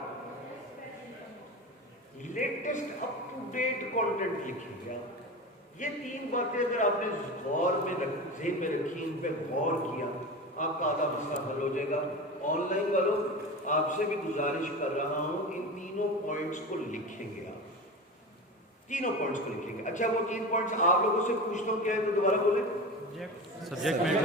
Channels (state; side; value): normal; both; correlation 0.27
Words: latest up to date content لکھیں گے. یہ 3 باتیں اگر آپ نے غور میں ذہن میں رکھی, ان پہ غور کیا, آپ کا آدھا مسئلہ حل ہو جائے گا. آن لائن والوں آپ سے بھی گزارش کر رہا ہوں ان تینوں پوائنٹس کو لکھیں گے. آپ تینوں پوائنٹس کو لکھیں گے. اچھا وہ 3 پوائنٹس آپ لوگوں سے پوچھتا ہوں, کیا ہے تو دوبارہ بولیں. سبجیکٹ